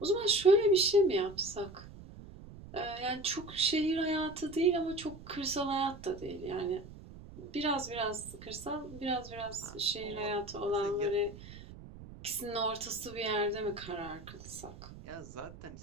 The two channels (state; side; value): noise; right; rumble, 16 dB below the sound